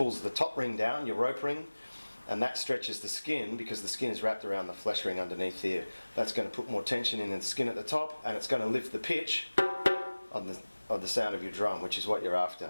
the top ring down, your rope ring, and that stretches the skin because the skin is wrapped around the flesh ring underneath here. That's going to put more tension in the skin at the top, and it's going to lift the pitch of the sound of your drum, which is what you're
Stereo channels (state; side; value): inverted; both; correlation -1.00